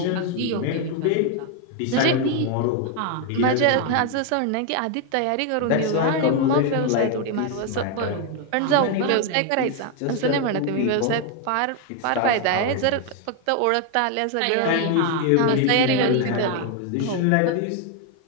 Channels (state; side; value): different; both; correlation 0.01